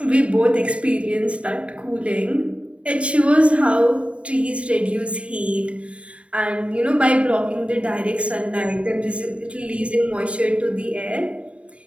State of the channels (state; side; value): late; left; 0.062 ms